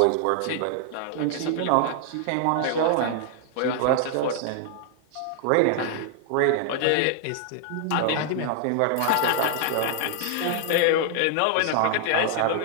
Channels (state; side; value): different; both; correlation 0.00